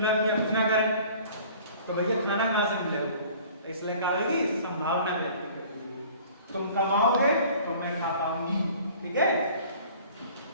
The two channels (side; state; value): both; inverted; correlation -0.49